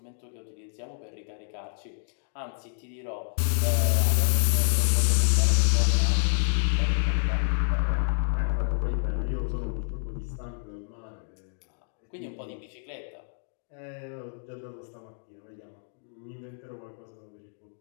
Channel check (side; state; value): right; silent; digital silence